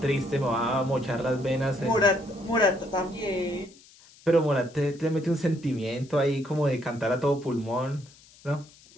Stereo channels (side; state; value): left; noise; hiss, 25 dB below the sound